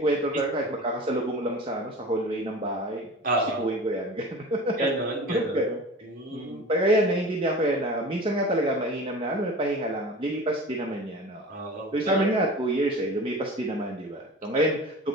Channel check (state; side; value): normal; both; correlation 0.37